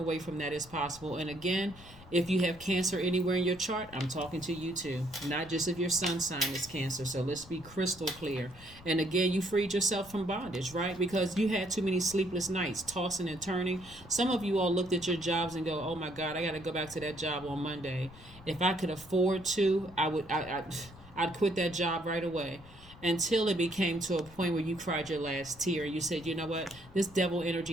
from that as possible. And again, if you have Cancer anywhere in your chart, I'm talking to you too. Not just if your sun sign is Cancer. So let's be crystal clear. And again, you freed yourself from bondage, right? Because you had too many sleepless nights, tossing and turning. Some of you all looked at your jobs and go, oh my God, I got to go back to that job on Monday. If I could afford to, I'd quit that job right away. Until it became to a point where you cried your last tear. You said, you know what, this devil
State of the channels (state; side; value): noise; left; rumble, 20 dB below the sound